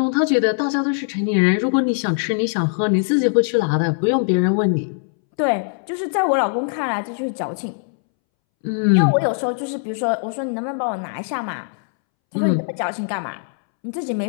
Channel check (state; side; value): silent; right; 64 dB below the other